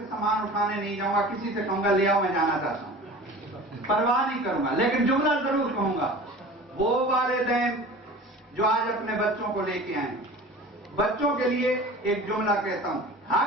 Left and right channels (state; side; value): normal; both; correlation 0.39